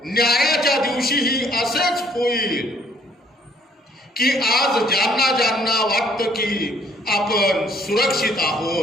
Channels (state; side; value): normal; both; correlation 0.63